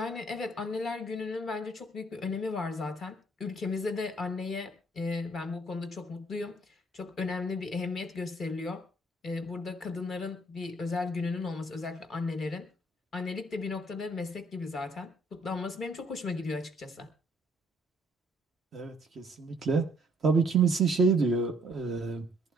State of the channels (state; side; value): normal; both; correlation 0.64